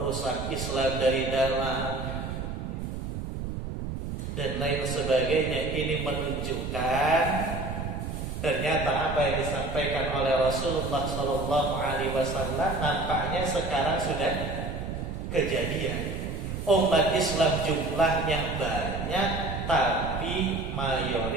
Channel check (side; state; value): right; noise; rumble, 5 dB below the sound